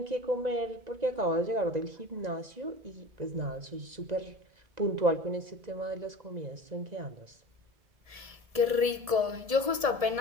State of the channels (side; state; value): left; late; 1.7 ms